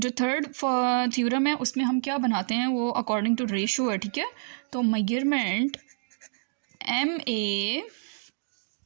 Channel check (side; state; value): left; silent; digital silence